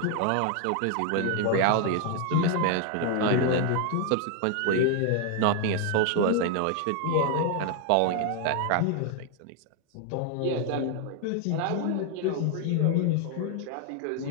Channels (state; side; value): different; both; correlation 0.00